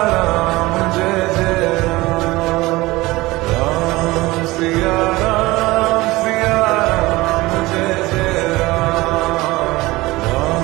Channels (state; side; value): quieter; left; 20.2 dB